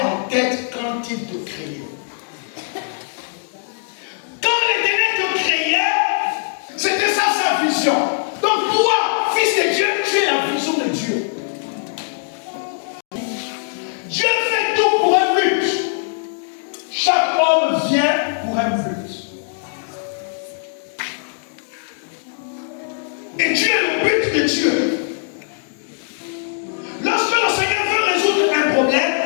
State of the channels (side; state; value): right; silent; digital silence